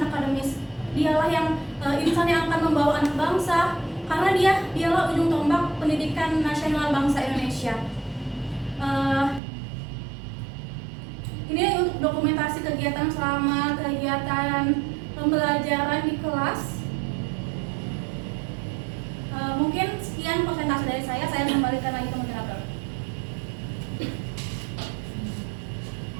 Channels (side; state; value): left; drops out; at 9.4 s